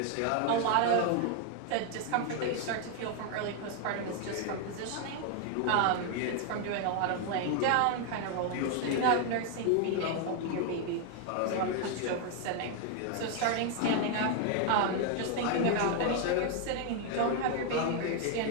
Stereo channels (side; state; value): both; different; correlation 0.00